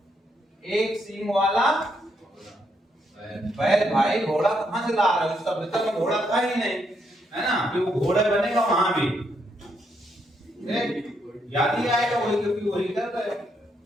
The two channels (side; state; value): both; normal; correlation 0.76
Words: एक सिंह वाला बैल भाई घोड़ा कहाँ से ला रहा है, उस सभ्यता में घोड़ा था ही नहीं, है ना, कि वो घोड़ा बनेगा वहां भी, याद ही आएगा वही, क्योंकि वही कर रहे हैं।